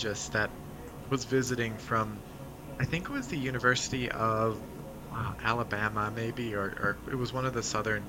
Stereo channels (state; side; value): identical; both; correlation 1.00